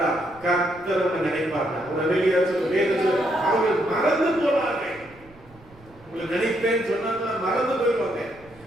கர்த்தர் உன்னை நினைப்பாங்க. ஒரு அல்லேலூயா சொல்லு. வேதம் சொல்லு. அவர்கள் மறந்து போனாங்க. உங்களை நினைப்பேன்னு சொன்னாங்களா மறந்து போயிடுவாங்க.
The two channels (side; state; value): right; noise; rumble, 25 dB below the sound